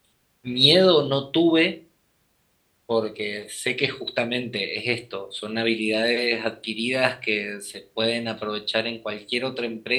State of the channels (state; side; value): identical; both; correlation 1.00